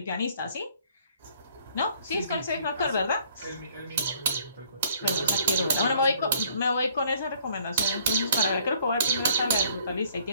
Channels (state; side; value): inverted; both; correlation -0.60